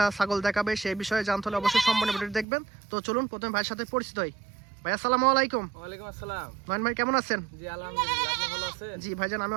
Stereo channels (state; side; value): drops out; left; at 2.5 s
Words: ছাগল দেখাবে সেই বিষয়ে জানতে হলে অবশ্যই সম্পূর্ণ ভিডিও দেখবেন। তো চলুন প্রথমে ভাইয়ের সাথে পরিচিত হই। ভাই আসসালামু আলাইকুম। ওয়ালাইকুম আসসালাম। নয়ন ভাই কেমন আছেন? জি আলহামদুলিল্লাহ, আপনি ভালো আছেন? জি ভাইজান আমি